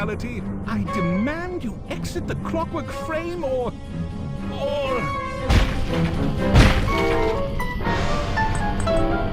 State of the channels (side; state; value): both; identical; correlation 1.00